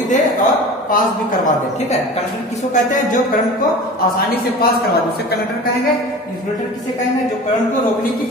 दे और पास भी करवा दे। ठीक है, कंडक्टर किसको कहते हैं, जो करंट को आसानी से पास करवा दे, उसे कंडक्टर कहेंगे। इंसुलेटर किसे कहेंगे, जो करंट को रोकने की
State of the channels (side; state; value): both; normal; correlation 0.37